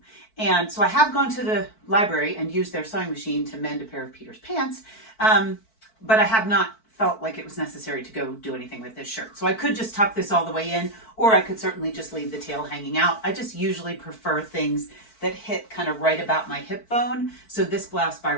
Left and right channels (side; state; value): right; late; 4.5 ms